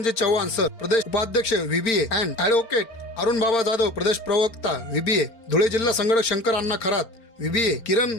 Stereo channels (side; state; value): right; late; 4.4 ms